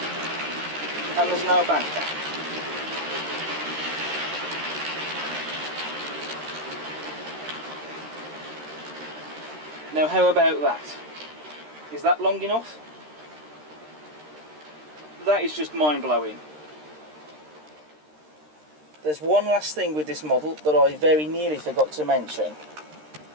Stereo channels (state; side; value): late; left; 13 ms